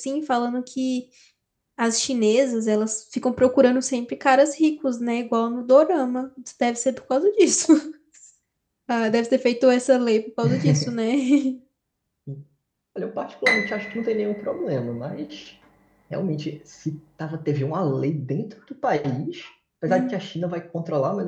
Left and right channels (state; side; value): identical; both; correlation 1.00